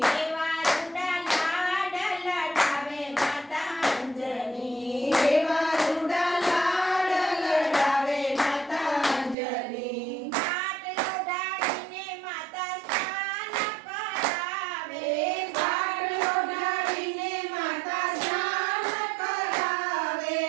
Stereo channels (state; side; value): drops out; left; at 9.3 s